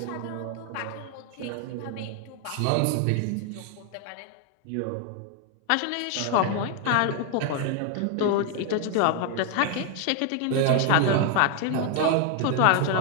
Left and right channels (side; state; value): both; different; correlation 0.00